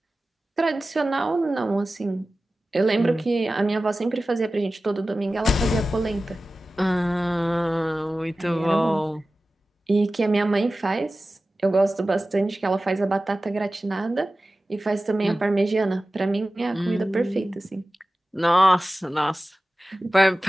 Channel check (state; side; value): normal; both; correlation 0.96